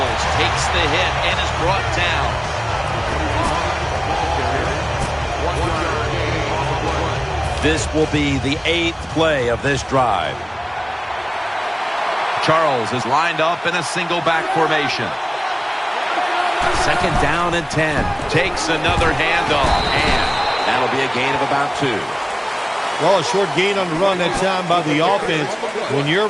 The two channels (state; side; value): identical; both; correlation 1.00